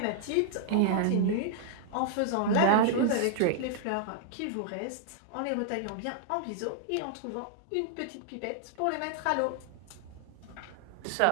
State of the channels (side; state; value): both; different; correlation -0.01